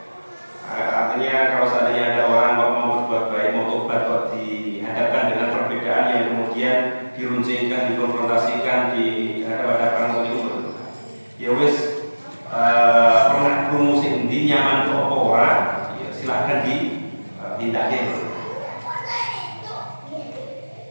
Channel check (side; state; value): both; inverted; correlation -1.00